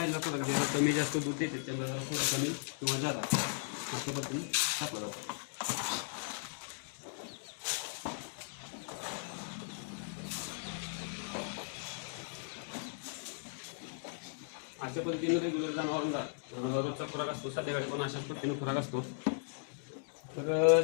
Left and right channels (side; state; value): right; silent; digital silence